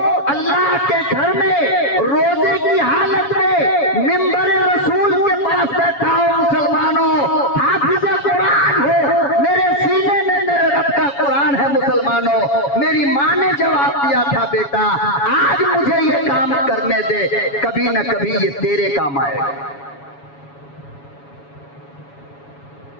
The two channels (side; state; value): right; late; 7.2 ms